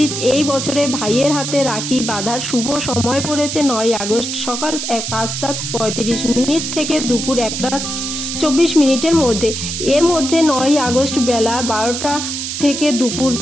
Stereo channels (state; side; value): noise; right; hiss, 4 dB below the sound